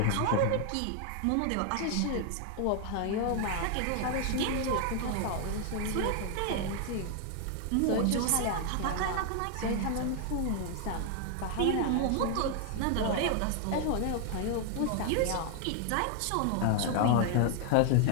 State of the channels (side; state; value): both; different; correlation 0.00